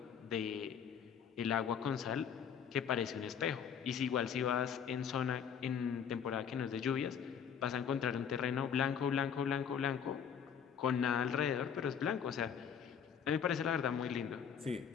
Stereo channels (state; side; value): quieter; right; 7.7 dB